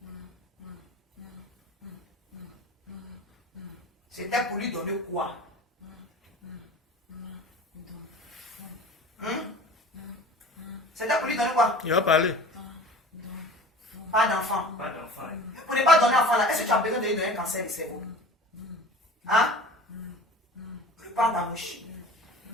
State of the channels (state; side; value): normal; both; correlation 0.40